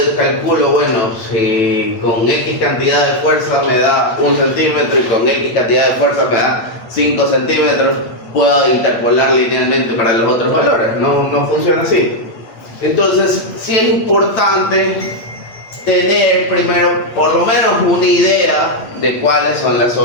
calculo, bueno, si con X cantidad de fuerza me da 1 centímetro y con X cantidad de fuerza me da 5 centímetros, puedo interpolar linealmente para los otros valores. No funciona así. Entonces sí es importante tener primero por lo menos una idea de cuáles son las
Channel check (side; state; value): right; late; 8.5 ms